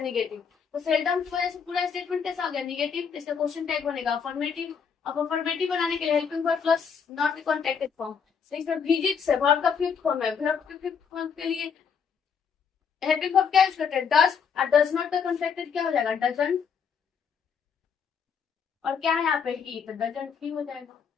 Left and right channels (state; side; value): quieter; right; 6.6 dB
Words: निगेटिव। तो सेल्डम की वजह से पूरा स्टेटमेंट कैसा हो गया निगेटिव, तो इसका क्वेश्चन टैग बनेगा अफर्मेटिव। अब अफर्मेटिव बनाने के लिए helping verb plus not contacted form, तो इसमें विजिट्स है वर्ब का फिफ्थ फॉर्म है, वर्ब के फिफ्थ फॉर्म के लिए हेल्पिंग वर्ब क्या यूज करते हैं डज, और डज नॉट का कॉन्टेक्टेड क्या हो जाएगा डजंट, और क्या है यहाँ पे ही, तो डजंट ही हो जाएगा।